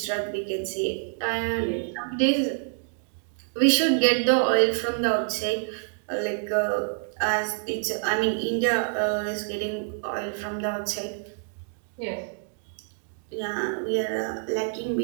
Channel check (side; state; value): left; silent; digital silence